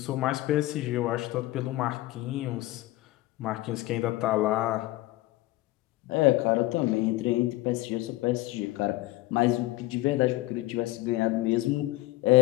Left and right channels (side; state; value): right; quieter; 18.1 dB